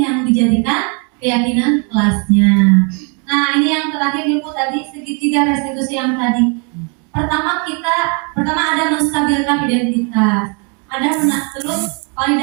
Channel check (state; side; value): quieter; left; 36.1 dB